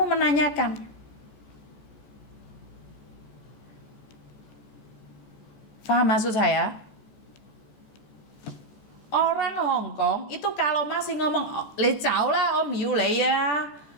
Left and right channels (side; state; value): right; late; 14 ms